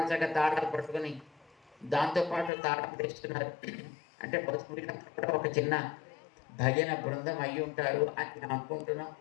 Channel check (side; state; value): right; drops out; at 2.5 s